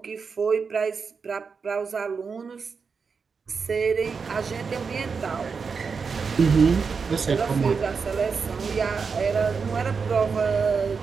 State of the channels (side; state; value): left; quieter; 5.4 dB